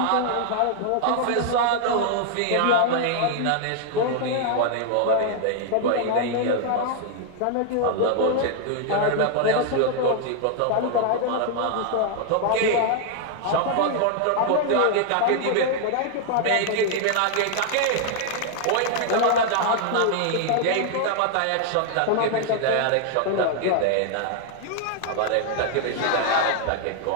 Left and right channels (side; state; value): both; different; correlation 0.00